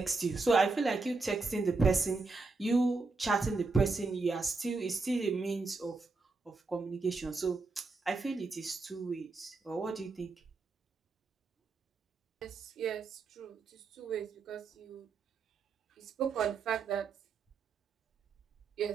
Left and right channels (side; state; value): left; quieter; 3.9 dB